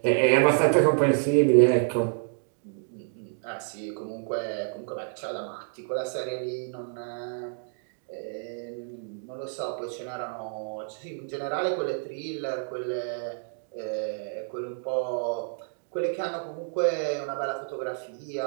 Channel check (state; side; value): silent; left; digital silence